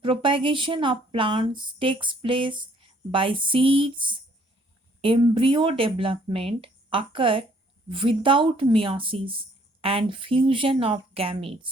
propagation of plants, takes place by seeds. Embryo development occur without meiosis and fusion of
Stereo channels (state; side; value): normal; both; correlation 0.63